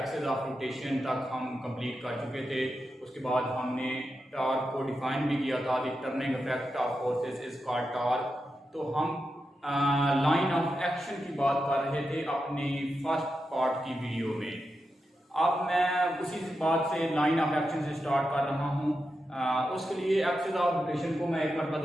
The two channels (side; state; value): both; normal; correlation 0.88